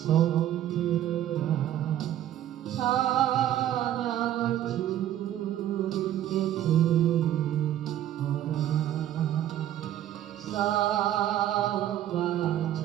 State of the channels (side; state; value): left; quieter; 11.9 dB